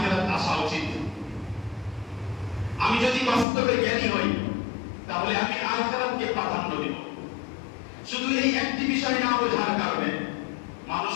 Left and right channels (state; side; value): drops out; right; at 3.5 s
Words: আসা উচিত। আমি যদি বাস্তবে জ্ঞানী হই তাহলে আমি আখিরাতকে প্রাধান্য দেব। শুধু এই একটি বিষয় না বোঝার কারণে মানুষ